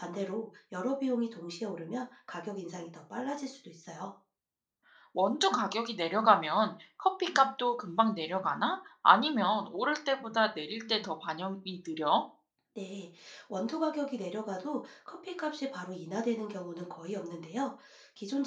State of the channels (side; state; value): both; identical; correlation 1.00